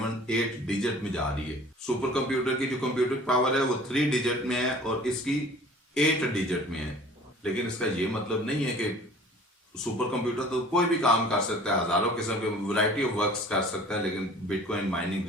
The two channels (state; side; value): normal; both; correlation 0.48